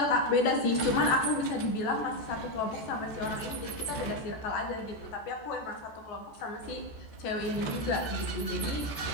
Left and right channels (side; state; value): right; late; 14 ms